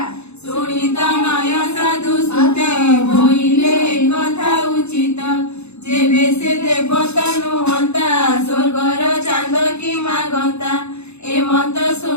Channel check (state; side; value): late; right; 0.81 ms